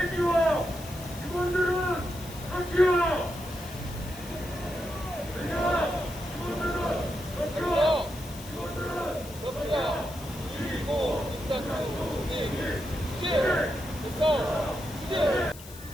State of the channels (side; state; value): left; noise; hiss, 17 dB below the sound